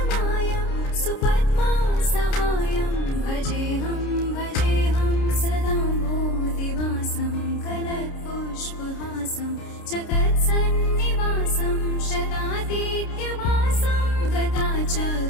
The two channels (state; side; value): late; right; 30 ms